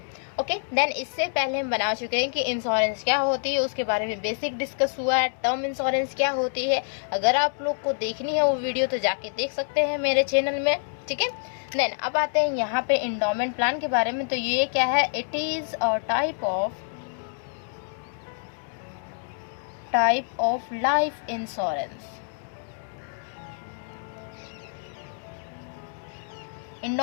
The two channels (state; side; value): silent; right; digital silence